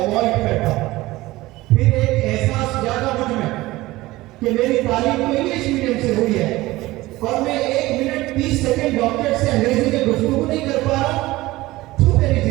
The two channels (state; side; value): quieter; left; 18.6 dB